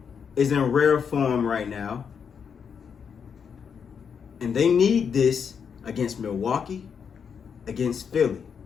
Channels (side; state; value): right; quieter; 6.8 dB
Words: is in rare form right now. And they need this against Milwaukee, against Philly,